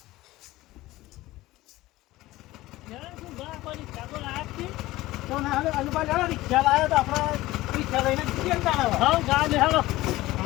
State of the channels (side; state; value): right; quieter; 17.7 dB